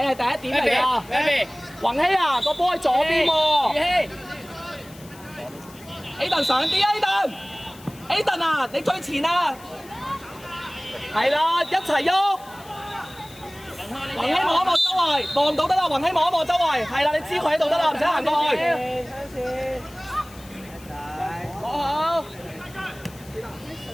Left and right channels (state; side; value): noise; left; hiss, 22 dB below the sound